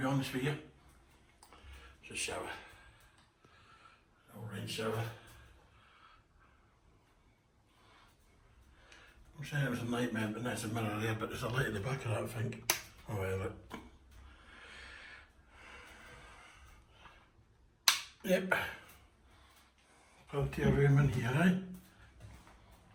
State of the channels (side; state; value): both; identical; correlation 1.00